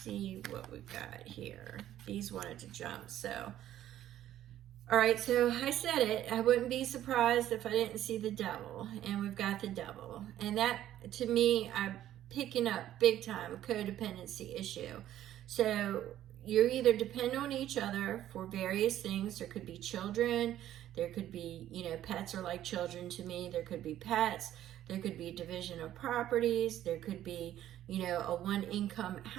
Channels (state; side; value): quieter; left; 12.4 dB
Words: what we've got here. These wanted to jump, so. All right, so I said it. I wouldn't be surprised if I didn't see the Devil, and we've got the Devil. And that, to me, I'm picking up big time a codependency issue. So you either depend on each other for various things. There could be children. There could be, pets are like children to me. There could be pets. There could be division of properties. There could be, a one-income